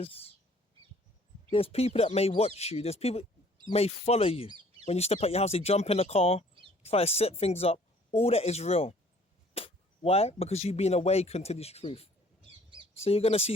people that may watch you. There's people may follow you. When you step out your house, they jump in the car, try to set things up. All that is real. Why? Because you've been awakened to this truth. So you're going to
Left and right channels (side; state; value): both; normal; correlation 0.56